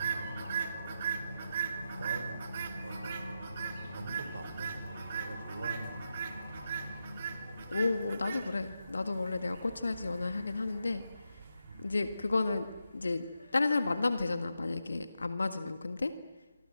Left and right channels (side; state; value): both; inverted; correlation -0.87